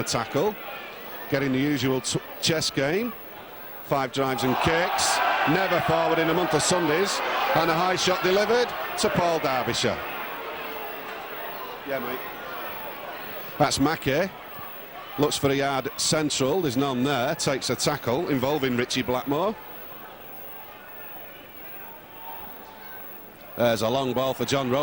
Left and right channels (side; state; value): both; identical; correlation 1.00